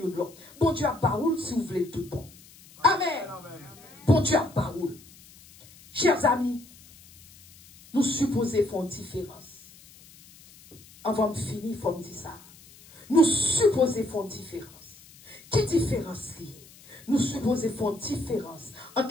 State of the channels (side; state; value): left; noise; hiss, 23 dB below the sound